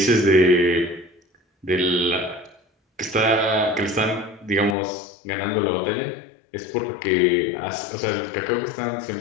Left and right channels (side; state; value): right; drops out; at 4.8 s